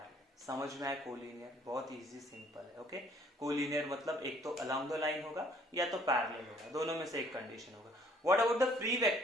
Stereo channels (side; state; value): both; normal; correlation 0.60